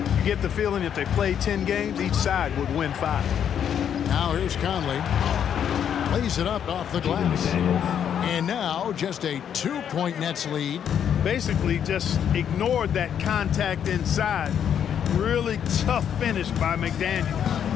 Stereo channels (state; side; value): quieter; right; 8.8 dB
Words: get the feeling if they play 10 games, each side would win 5. Now here's Conley. Lays it up off the glass. And now just a 2-point Nets lead. Basically just ignored that contact inside. Really tough finish by McDaniel.